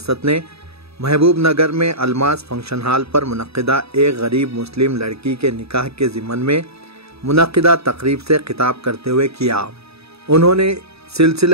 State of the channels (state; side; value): late; left; 0.78 ms